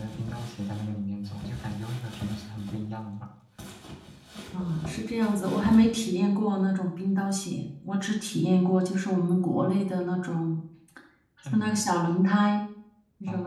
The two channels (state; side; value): identical; both; correlation 1.00